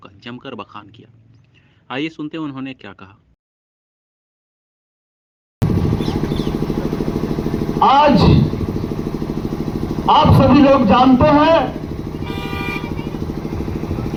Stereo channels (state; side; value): identical; both; correlation 1.00